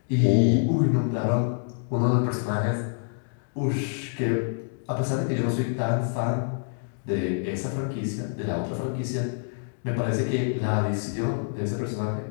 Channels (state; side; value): silent; right; digital silence